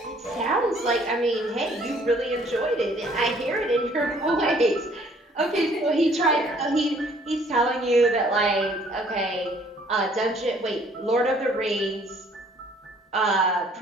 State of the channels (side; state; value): both; normal; correlation 0.60